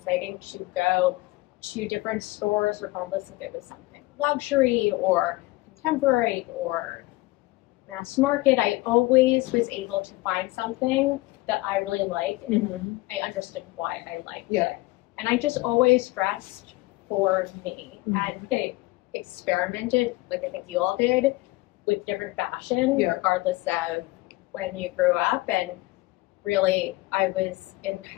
to go to different stores, regardless if it was something luxury or contemporary or mass market. I always was able to find something that I really liked, and I understood why I liked it. And I just always dressed for me, and I experimented, like I think you all did, with different fashion, regardless of when you grew up. And really, I was in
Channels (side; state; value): right; quieter; 20.8 dB